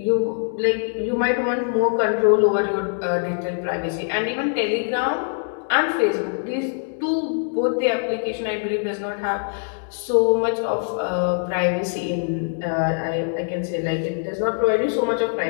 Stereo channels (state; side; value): silent; right; digital silence